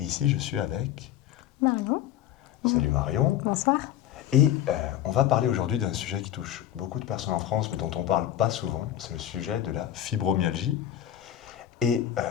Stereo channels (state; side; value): quieter; right; 11.8 dB